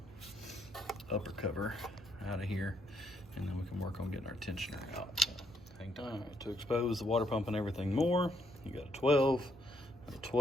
upper cover out of here, and then we can work on getting our tensioner out. So, hang tight. All right, to expose the water pump and everything more, you got a 12, and a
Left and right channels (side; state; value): right; noise; hum, 21 dB below the sound